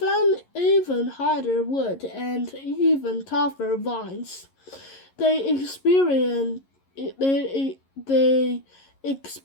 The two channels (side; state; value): right; late; 11 ms